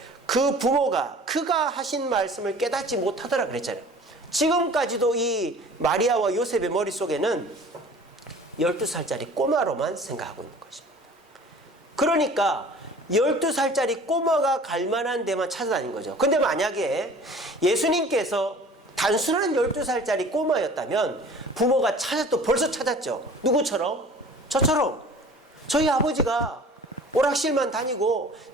그 부모가 그가 하신 말씀을 깨닫지 못하더라 그랬잖아요. 지금까지도 이 마리아와 요셉의 머릿속에는 12살짜리 꼬마로만 생각하고 있는 것입니다. 그러니까 12살짜리 꼬마가 갈 만한 데만 찾아다닌 거죠. 근데 만약에 예수님께서 단순한 12살짜리 꼬마였다면 부모가 벌써 찾았죠. 누구처럼? 저처럼. 저희 아버지가 오락실만 다니고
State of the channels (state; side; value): normal; both; correlation 0.46